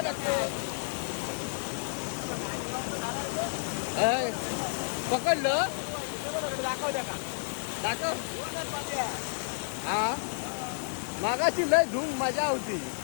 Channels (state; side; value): silent; right; digital silence